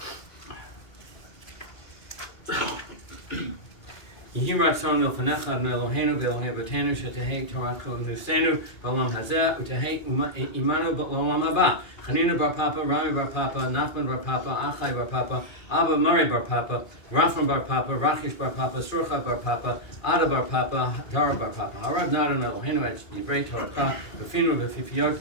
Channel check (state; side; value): late; right; 2.4 ms